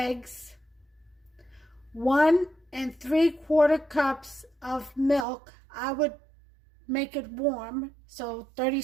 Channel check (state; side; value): drops out; left; at 5.2 s